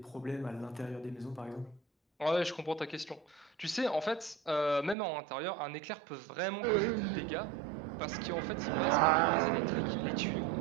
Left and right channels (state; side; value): drops out; left; at 5.0 s